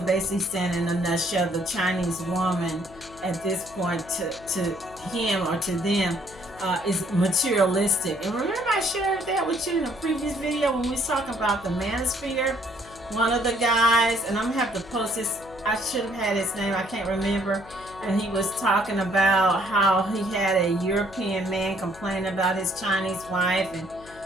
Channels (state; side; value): noise; left; hum, 20 dB below the sound